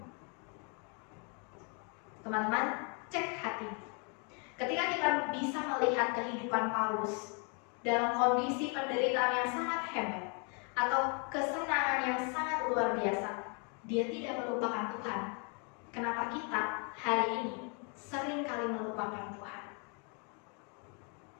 Teman-teman, cek hati. Ketika kita bisa melihat kehidupan Paulus dalam kondisi penderitaan yang sangat hebat atau kesenangan yang sangat luar biasa, dia tidak melupakan Tuhan. Kenapa kita hari ini sering kali melupakan Tuhan?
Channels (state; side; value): quieter; right; 36.7 dB